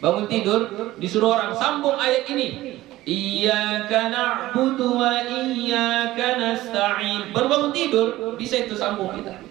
tidur disuruh orang sambung ayat ini. Iyyaka na'budu wa iyyaka nasta'in. Baru bangun tidur bisa itu sambung kita.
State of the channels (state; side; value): quieter; left; 16.4 dB